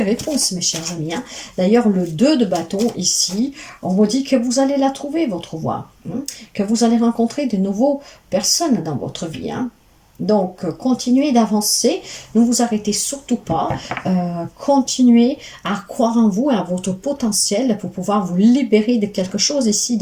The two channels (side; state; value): both; identical; correlation 1.00